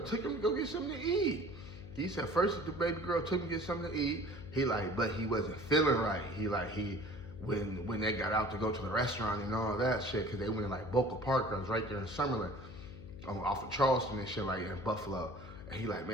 took him to go get something to eat. He said first the baby girl took him to get something to eat. He like, but he wasn't feeling right. When they got out to go to the restaurant and all that shit, because they went to like Boca Park, I was right there in Summerlin, off of Charleston and shit, like in Buffalo. And he like,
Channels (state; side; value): noise; left; hum, 13 dB below the sound